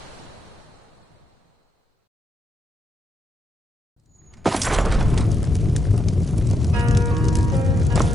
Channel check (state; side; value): normal; both; correlation 0.80